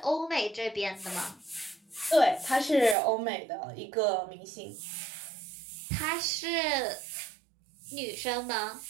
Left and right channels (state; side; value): drops out; left; at 3.0 s